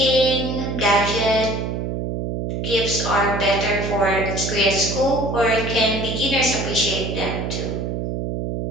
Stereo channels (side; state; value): right; noise; hum, 3 dB below the sound